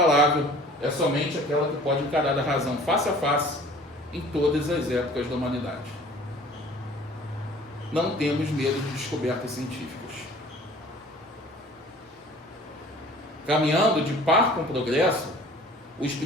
é somente aquela que pode encarar a razão face a face em todas as épocas da humanidade. Não temos medo de descobertas científicas. Caminhando de par com o progresso, o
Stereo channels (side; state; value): both; normal; correlation 0.49